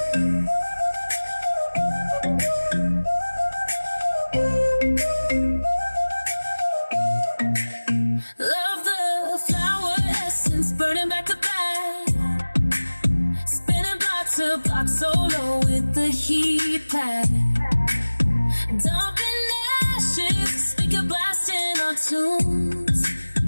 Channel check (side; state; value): both; inverted; correlation -1.00